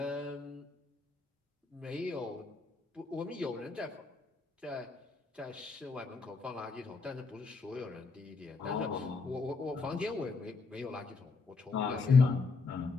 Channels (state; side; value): quieter; right; 4.3 dB